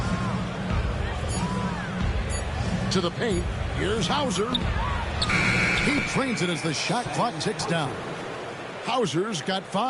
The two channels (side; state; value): both; identical; correlation 1.00